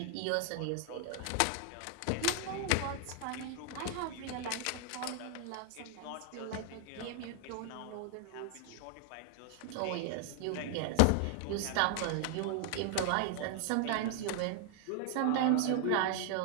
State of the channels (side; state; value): both; different; correlation 0.00